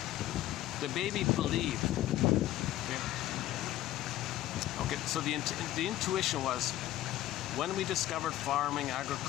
the baby believed. Okay. So the intuition was when we discovered farming,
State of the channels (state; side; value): quieter; right; 14.1 dB